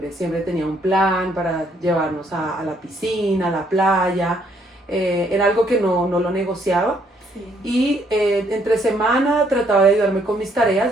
tenía un plan para llevarnos a la piscina, a la playa. Era algo que no lo negociaba. Y entre semana trataba de ayudarme con mis tareas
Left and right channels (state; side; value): normal; both; correlation 0.69